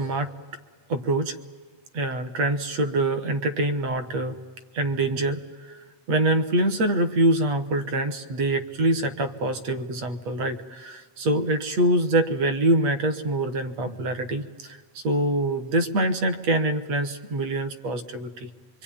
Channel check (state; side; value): late; left; 8.3 ms